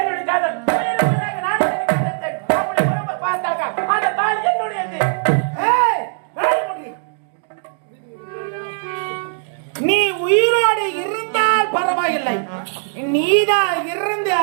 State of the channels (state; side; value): silent; left; digital silence